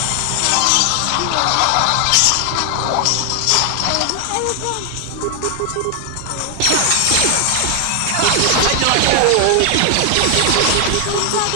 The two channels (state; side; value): different; both; correlation 0.00